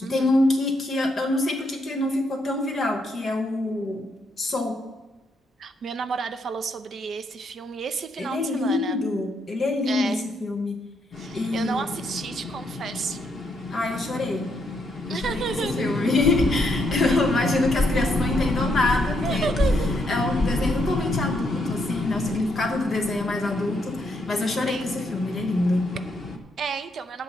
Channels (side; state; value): both; normal; correlation 0.76